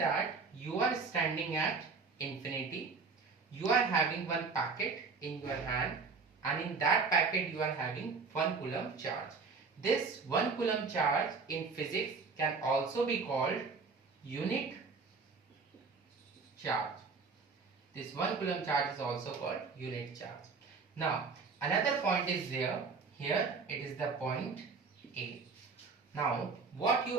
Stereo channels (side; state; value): left; quieter; 4.7 dB